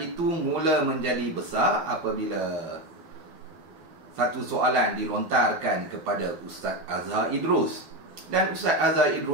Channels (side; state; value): left; late; 12 ms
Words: mula menjadi besar apabila satu soalan dilontarkan kepada Ustaz Azhar Idrus, dan Ustaz Azhar